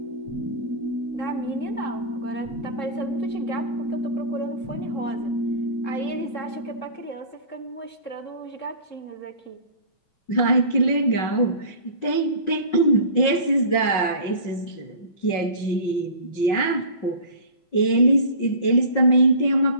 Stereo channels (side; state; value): right; late; 5.4 ms